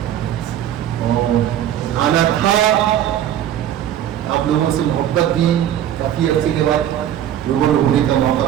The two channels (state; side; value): quieter; left; 11.0 dB